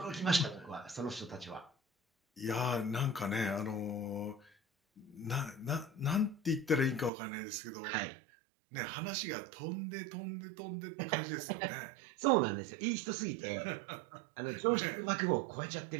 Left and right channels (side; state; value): left; drops out; at 7.1 s